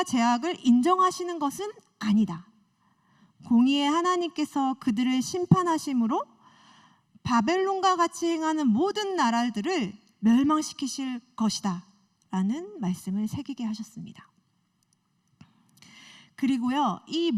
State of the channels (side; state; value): both; identical; correlation 1.00